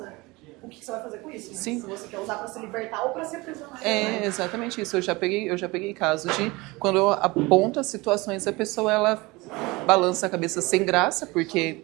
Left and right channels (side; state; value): left; quieter; 23.2 dB